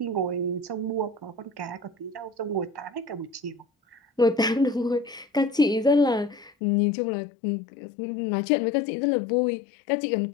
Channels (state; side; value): drops out; right; at 6.5 s